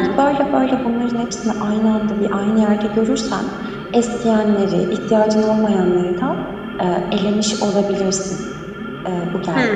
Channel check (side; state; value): both; identical; correlation 1.00